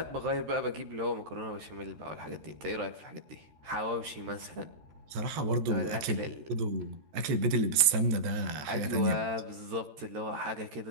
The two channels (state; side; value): late; left; 14 ms